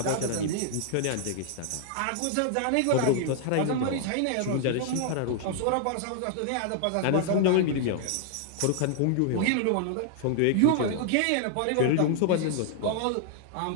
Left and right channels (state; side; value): different; both; correlation -0.01